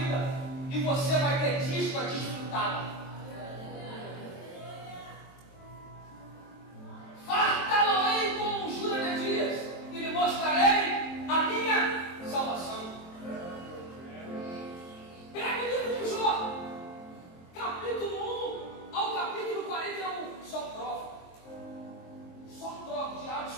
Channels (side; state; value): right; late; 23 ms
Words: e você vai ter dias para desfrutá-la. Fartá-lo-ei com juras de dias e lhe mostrarei a minha salvação. Pega o livro de Jó, capítulo 1 ao capítulo 41. Só prova. Só prova, o diabo